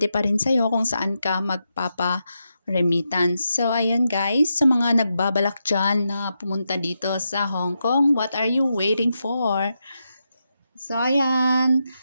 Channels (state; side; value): inverted; both; correlation -0.86